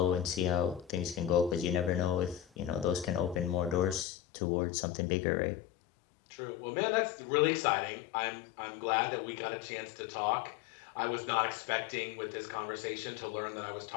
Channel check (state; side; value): drops out; right; at 4.0 s